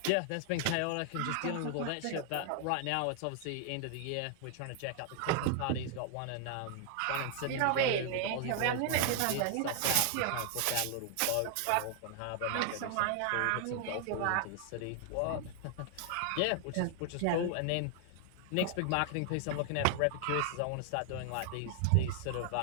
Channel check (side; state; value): both; different; correlation 0.00